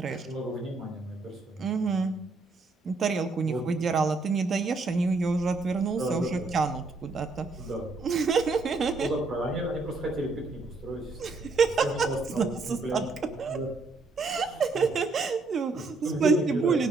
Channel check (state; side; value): quieter; left; 3.7 dB